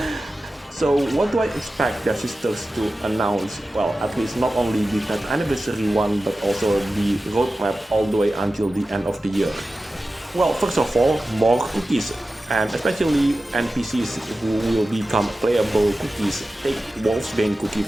So what do I expect Devsisters to announce? Well, at least not only the 10th anniversary one, but also the roadmap all the way until the end of the year. Well, first of all, more cookies, and especially NPCs who will become playable cookies. Take Wolfsbane Cookie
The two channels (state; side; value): normal; both; correlation 0.94